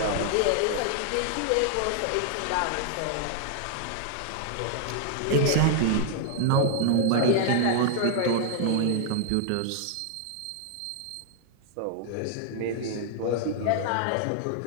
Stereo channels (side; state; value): both; different; correlation 0.00